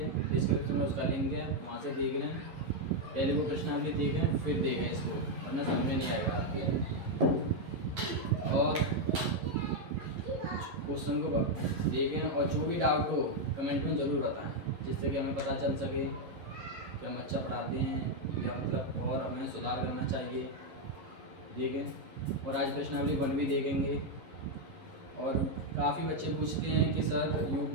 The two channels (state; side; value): late; left; 11 ms